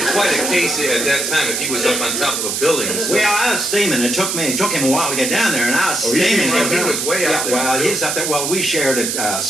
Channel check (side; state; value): right; noise; hiss, 1 dB below the sound